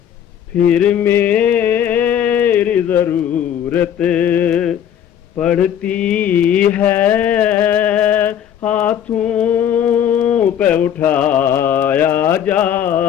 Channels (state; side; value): quieter; right; 9.5 dB